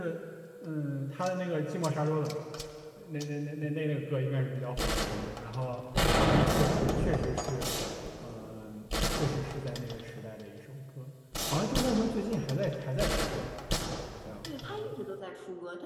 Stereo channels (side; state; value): both; identical; correlation 1.00